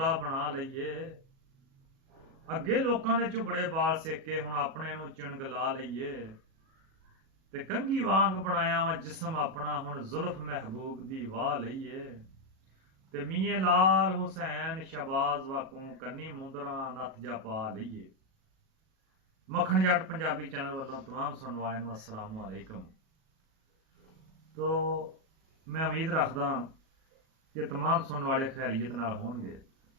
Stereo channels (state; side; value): late; left; 37 ms